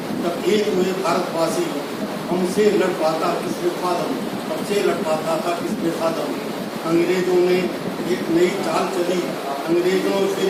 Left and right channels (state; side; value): identical; both; correlation 1.00